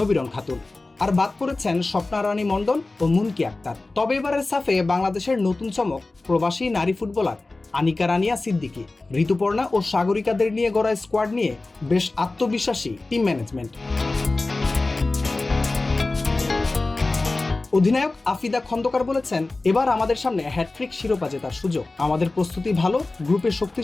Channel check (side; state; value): right; quieter; 3.2 dB